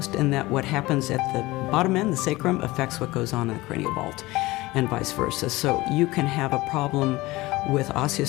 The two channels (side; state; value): right; quieter; 20.0 dB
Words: in that what happens at the bottom end, the sacrum, affects what goes on in the cranial vault, and vice versa. So you can have a problem with